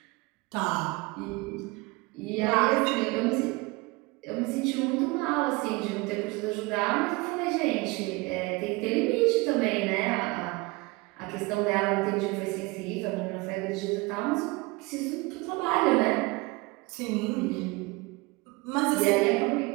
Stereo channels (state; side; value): quieter; left; 24.5 dB